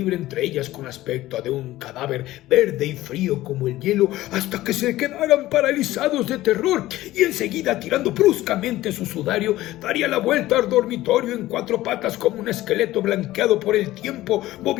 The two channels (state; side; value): quieter; right; 16.1 dB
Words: entre ellas con aspecto de un cadáver verde y frío como el hielo hasta que se quedaran paralizados de terror, y enseguida, tirando bruscamente su sudario, daría la vuelta al dormitorio en 4 patas como un esqueleto blanqueado por el tiempo,